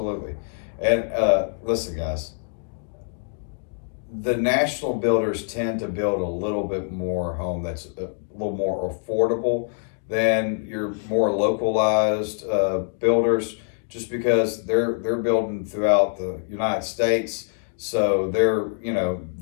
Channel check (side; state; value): right; silent; digital silence